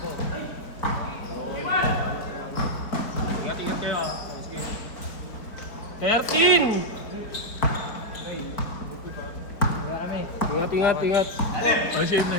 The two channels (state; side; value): late; right; 4.4 ms